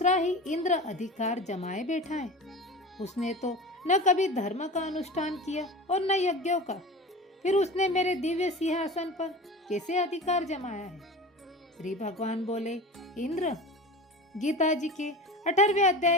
ही इंद्र अधिकार जमाए बैठा है। उसने तो न कभी धर्म का अनुष्ठान किया और न यज्ञों का। फिर उसने मेरे दिव्य सिंहासन पर कैसे अधिकार जमाया है? श्री भगवान बोले, इंद्र, गीता जी के 18वें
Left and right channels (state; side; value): normal; both; correlation 0.32